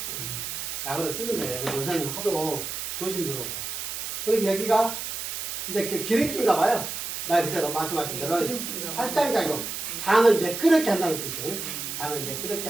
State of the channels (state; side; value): noise; right; hiss, 5 dB below the sound